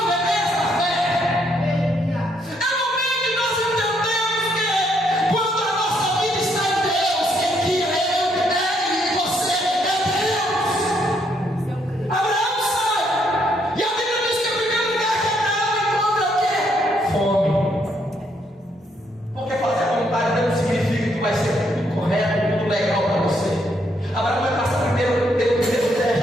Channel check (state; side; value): normal; both; correlation 0.73